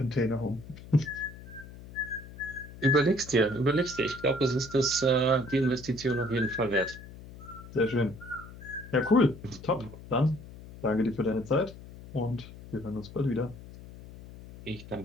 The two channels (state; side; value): noise; left; hum, 16 dB below the sound